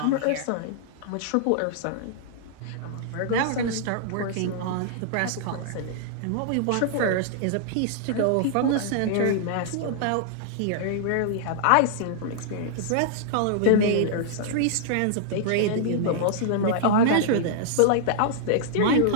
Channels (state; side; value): different; both; correlation -0.01